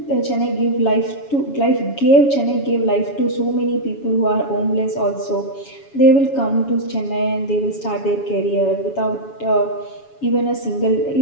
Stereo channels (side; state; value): right; late; 7.2 ms